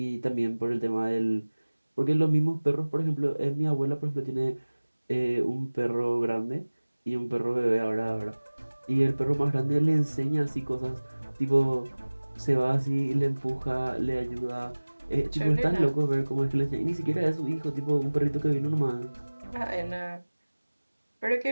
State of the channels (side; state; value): both; inverted; correlation -1.00